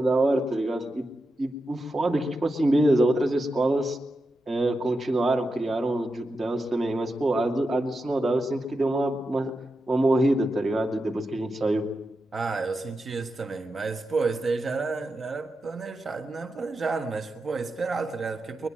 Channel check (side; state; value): both; normal; correlation 0.89